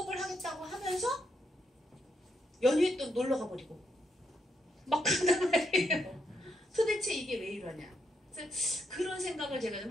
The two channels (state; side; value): normal; both; correlation 0.79